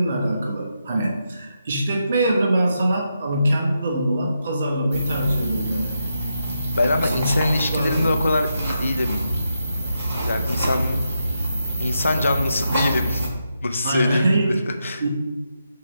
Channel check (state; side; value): inverted; both; correlation -0.84